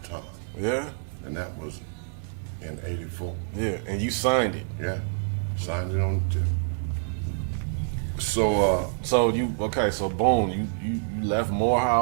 Yeah. And that was in '84. Yeah, and you signed it. Yeah, signed it on the tip. So boom, you left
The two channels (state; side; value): silent; left; digital silence